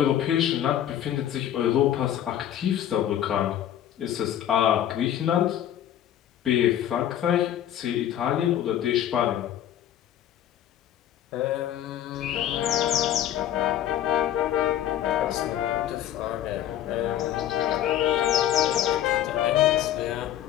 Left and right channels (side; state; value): right; quieter; 11.2 dB